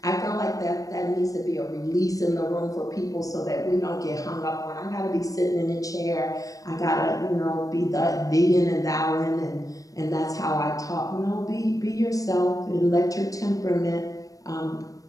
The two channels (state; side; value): late; right; 0.16 ms